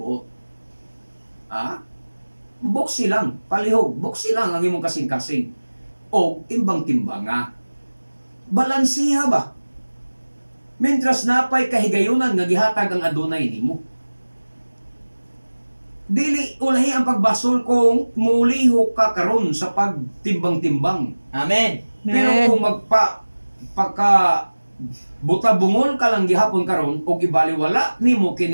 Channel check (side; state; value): both; inverted; correlation -1.00